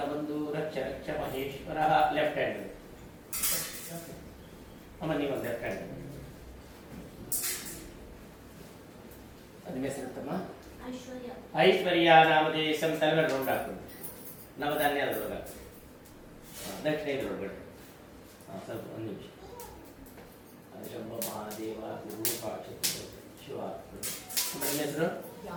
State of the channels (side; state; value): both; identical; correlation 1.00